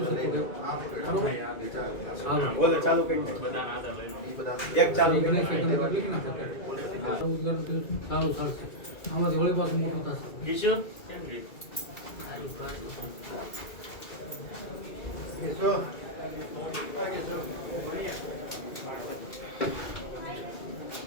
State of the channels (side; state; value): right; late; 2.3 ms